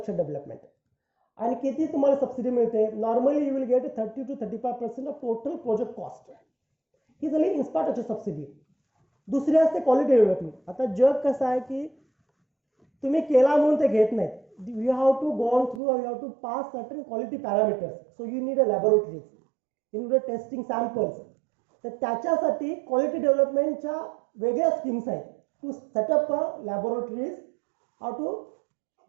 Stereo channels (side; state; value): left; drops out; at 15.8 s